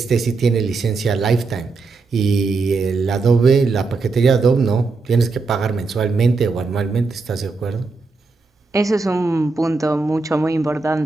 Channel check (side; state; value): left; quieter; 4.1 dB